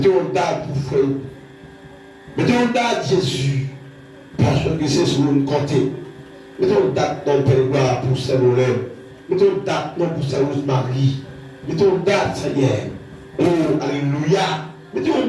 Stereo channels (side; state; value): both; identical; correlation 1.00